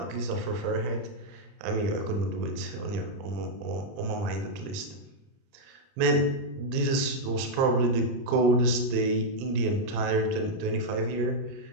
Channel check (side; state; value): left; late; 30 ms